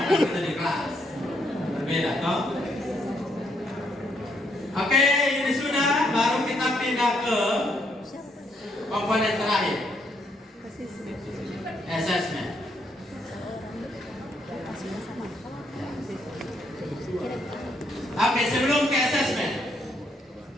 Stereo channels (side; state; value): both; normal; correlation 0.73